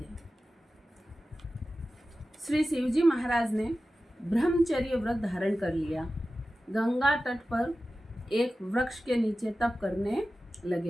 श्री शिवजी महाराज ने ब्रह्मचर्य व्रत धारण कर लिया। गंगा तट पर एक वृक्ष के नीचे तप करने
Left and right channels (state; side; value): normal; both; correlation 0.94